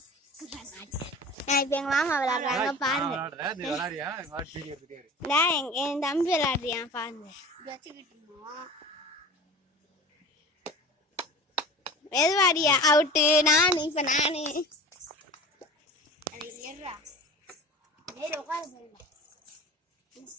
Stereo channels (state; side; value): normal; both; correlation 0.37